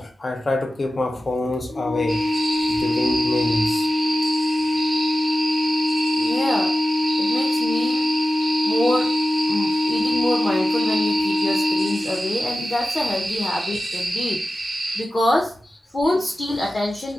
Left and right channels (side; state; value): both; normal; correlation 0.94